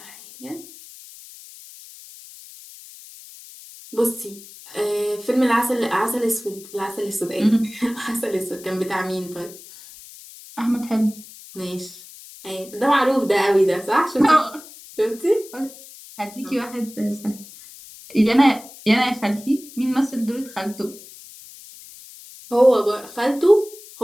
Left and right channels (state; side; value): noise; left; hiss, 18 dB below the sound